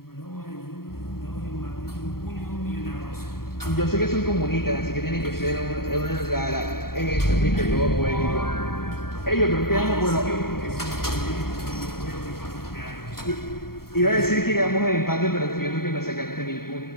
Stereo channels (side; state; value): right; late; 0.94 ms